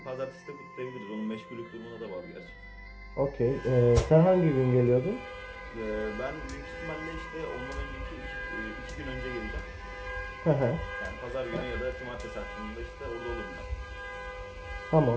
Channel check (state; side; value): identical; both; correlation 1.00